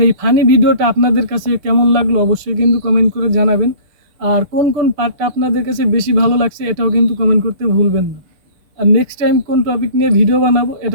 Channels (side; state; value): left; late; 6.8 ms